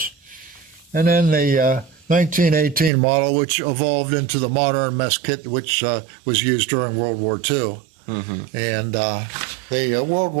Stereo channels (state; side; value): drops out; left; at 2.9 s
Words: And then the 1918 model, which evolved into the modern mess kit, which was used during World War II. And the World